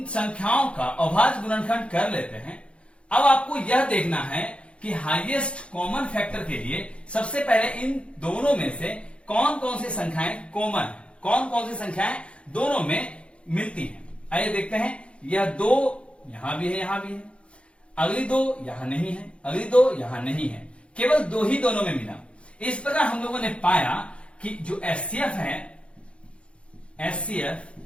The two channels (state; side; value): late; right; 0.059 ms